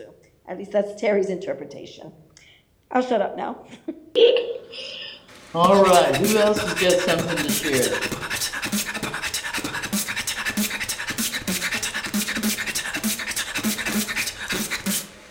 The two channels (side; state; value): both; identical; correlation 1.00